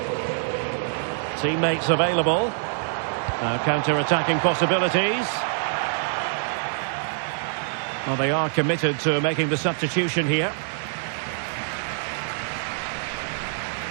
Teammates available. Now counter-attacking possibilities. Well, they are committed to making the substitution here.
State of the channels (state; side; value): silent; left; digital silence